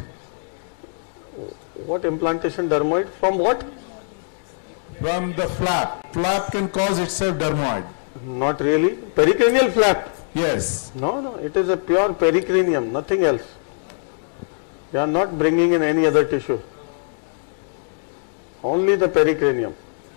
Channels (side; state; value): right; silent; digital silence